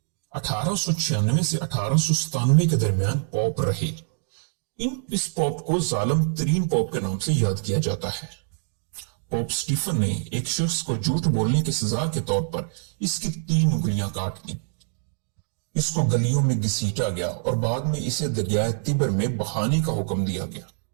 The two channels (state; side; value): silent; left; digital silence